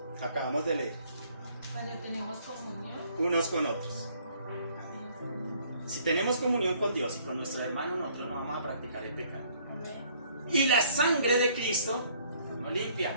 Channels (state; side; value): inverted; both; correlation -0.62